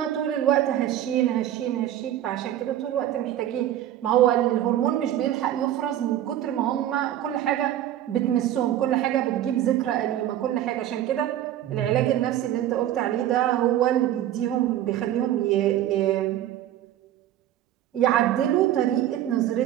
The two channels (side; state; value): left; quieter; 12.1 dB